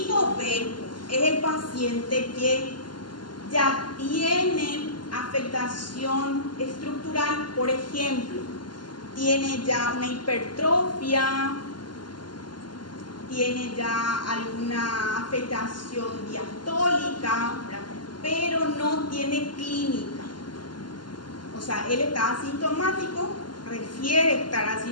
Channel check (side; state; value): right; late; 0.71 ms